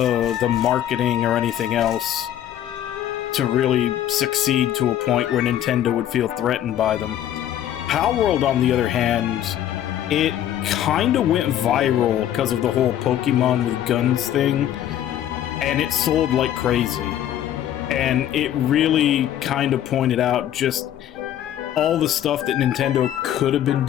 marketing or anything else to really succeed to a point where Nintendo would feel threatened by them. Palworld, on the other hand, it kind of went viral because of the whole Pokemon with guns thing, and it sold like crazy. And it really kind of pointed out just all the stuff that Nintendo could have been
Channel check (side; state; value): right; quieter; 11.3 dB